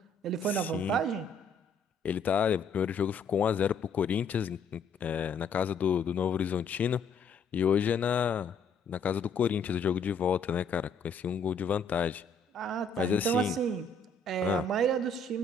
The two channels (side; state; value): right; quieter; 3.7 dB